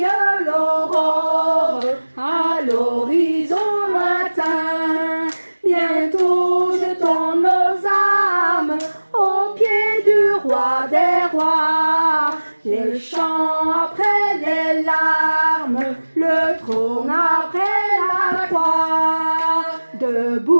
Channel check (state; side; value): inverted; both; correlation -1.00